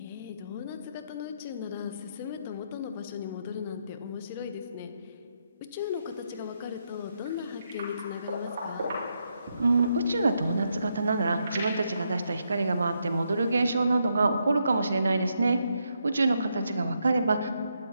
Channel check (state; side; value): inverted; both; correlation -0.80